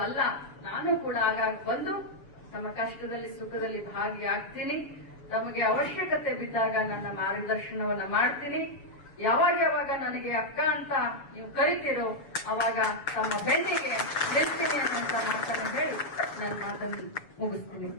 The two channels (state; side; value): late; right; 7.0 ms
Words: ನಾನು ಕೂಡ ಆಗಾಗ ಬಂದು ತಮ್ಮ ಕಷ್ಟದಲ್ಲಿ ಸುಖದಲ್ಲಿ ಭಾಗಿಯಾಗ್ತೀನಿ. ತಮಗೆ ಅವಶ್ಯಕತೆ ಬಿದ್ದಾಗ ನನ್ನ ಮಾರ್ಗದರ್ಶನವನ್ನ ಮಾಡ್ತೀನಿ. ಯಾವಾಗ ನನಗೆ ಅಕ್ಕ ಅಂತ ನೀವು ಕರಿತೀರೋ ಅವಾಗ ತಮ್ಮ ಬೆನ್ನಿಗೆ ನಿಲ್ತೀನಿ ಅನ್ನೋಂತ ಮಾತನ್ನು ಹೇಳಿ ನನ್ನ ಮಾತನ್ನು ಮುಗಿಸ್ತೀನಿ.